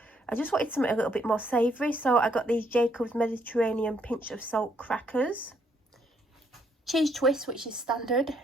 I just wanted something a little bit more savoury, so I got these Jacob's Mediterranean pinch of salt crackers. Cheese twist, which is standard.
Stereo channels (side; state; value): both; normal; correlation 0.71